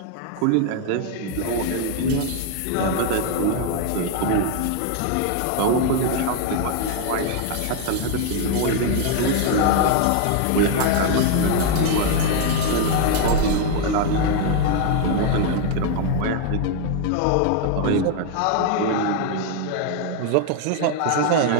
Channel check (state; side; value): different; both; correlation 0.00